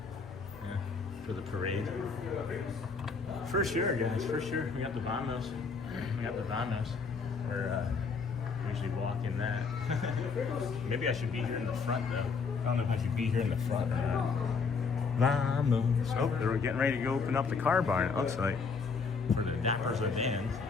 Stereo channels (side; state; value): right; quieter; 5.0 dB